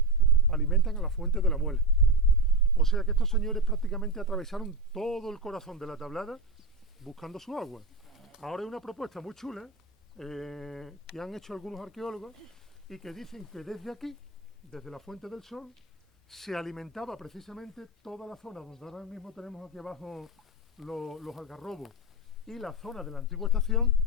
alimentan a la fuente de la Muela. O sea que estos señores prácticamente atravesaron todo el corazón de la Tablada buscando su agua. Ahora hay una propuesta muy chula que han hecho algunos arqueólogos y que dicen que desde aquí, desde la Fuente del Sol, se alimentaba precisamente toda la zona donde ahora mismo tenemos aquí abajo los algarrobos y la zona de la antigua estación,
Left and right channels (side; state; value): both; normal; correlation 0.14